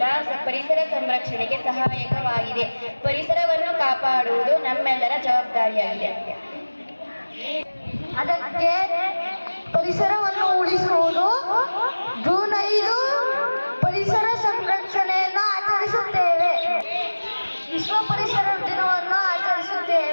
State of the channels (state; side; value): inverted; both; correlation -1.00